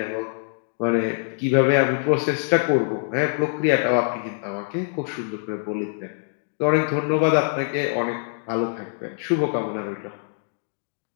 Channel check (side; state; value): right; silent; 62 dB below the other